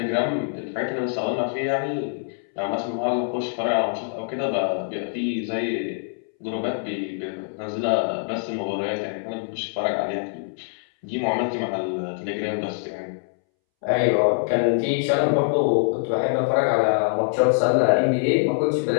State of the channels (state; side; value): silent; right; 62 dB below the other